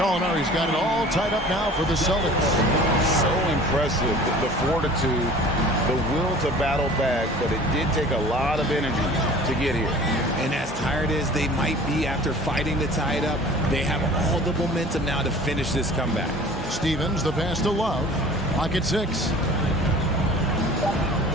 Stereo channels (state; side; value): normal; both; correlation 0.45